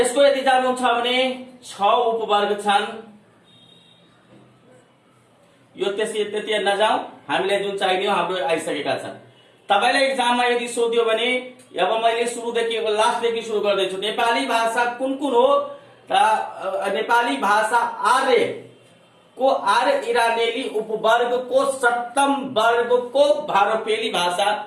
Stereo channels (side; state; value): both; identical; correlation 1.00